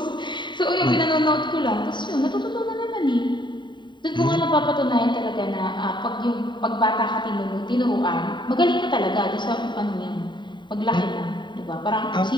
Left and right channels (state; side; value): late; right; 0.23 ms